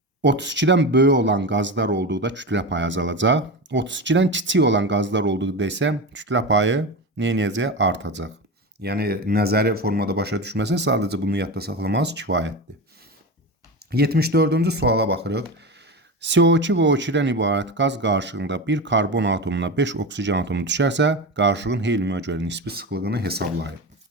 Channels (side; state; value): both; normal; correlation 0.23